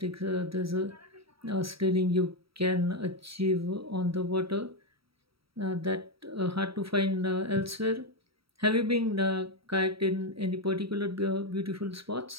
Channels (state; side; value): late; left; 0.75 ms